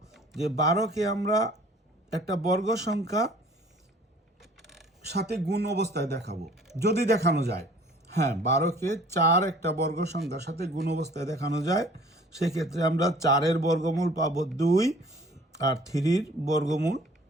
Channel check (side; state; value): both; normal; correlation 0.51